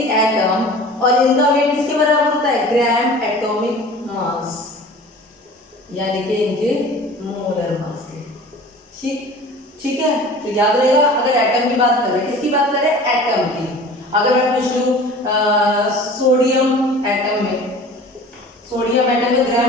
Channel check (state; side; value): normal; both; correlation 0.42